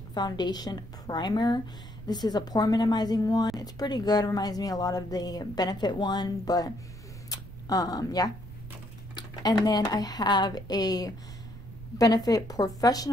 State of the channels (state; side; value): noise; right; rumble, 14 dB below the sound